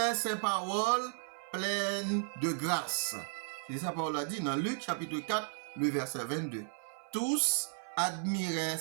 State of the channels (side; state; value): left; silent; 55 dB below the other